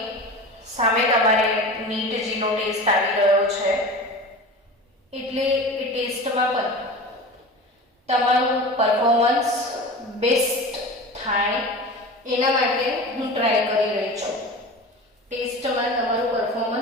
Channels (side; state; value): both; normal; correlation 0.33